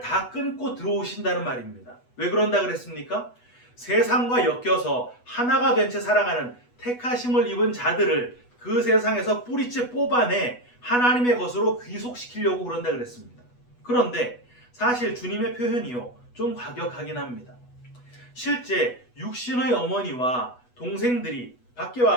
다 끊고 들어오신다는 말입니다. 왜 그런다 그랬습니까? 세상과 엮여서 하나가 된 채 살아가는 택하심을 입은 자들을 그 세상에서 뿌리째 뽑아내 하나님의 것으로 귀속시키려고 그런다 그랬습니다. 그런데 사실 주님의 표현이요, 좀 과격하긴 합니다. 실제 육신의 어머니와 동생들이 밖에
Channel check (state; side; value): late; right; 8.2 ms